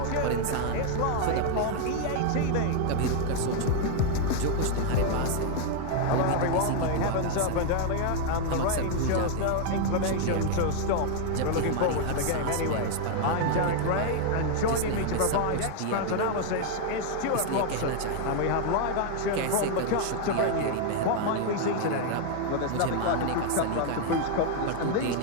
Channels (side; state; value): both; different; correlation 0.00